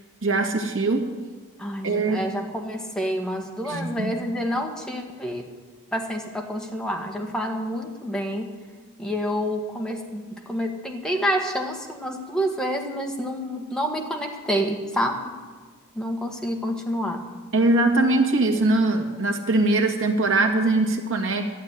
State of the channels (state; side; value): normal; both; correlation 0.55